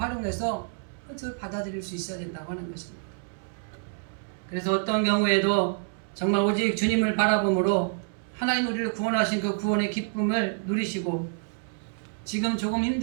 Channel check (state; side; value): silent; left; 60 dB below the other